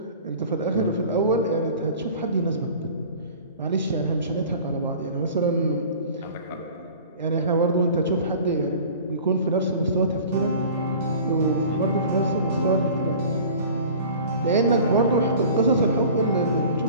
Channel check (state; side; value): inverted; both; correlation -0.43